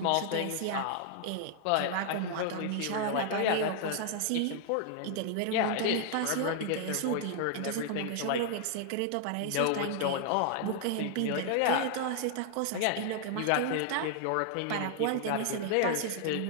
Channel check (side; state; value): both; different; correlation 0.00